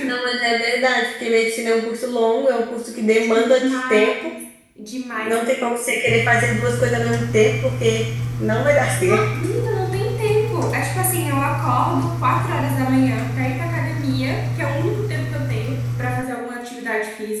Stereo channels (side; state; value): both; identical; correlation 1.00